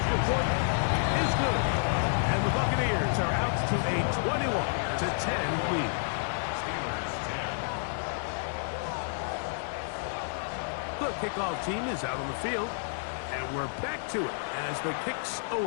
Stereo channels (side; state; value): right; silent; digital silence